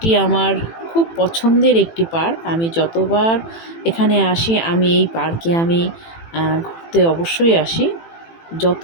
আমার খুব পছন্দের একটি পার্ক। আমি যতবার এখানে আসি আমি এই পার্কে ঘুরতে অবশ্যই আসি। যত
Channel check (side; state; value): right; late; 18 ms